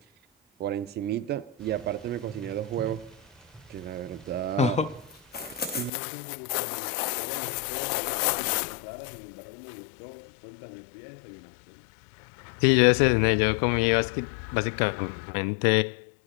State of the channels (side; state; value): right; drops out; at 5.9 s